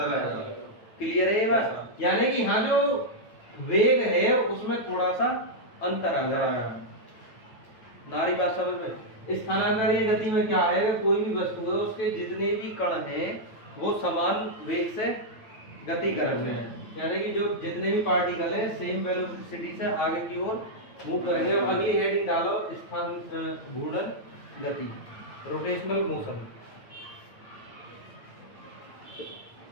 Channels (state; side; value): late; right; 9.1 ms